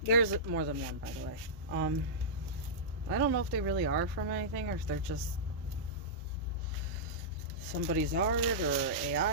there's more than one, by the way. I don't know if they really are from anything or if they're just somebody's art or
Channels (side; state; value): both; normal; correlation -0.14